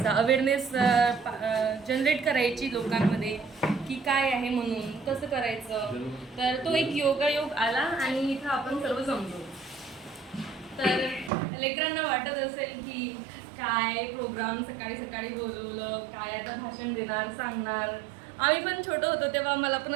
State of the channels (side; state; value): left; drops out; at 11.3 s